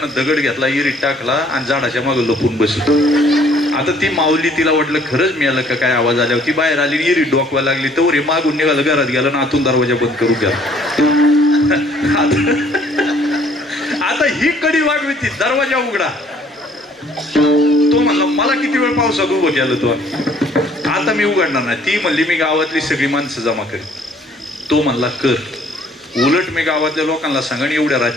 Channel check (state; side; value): normal; both; correlation 0.60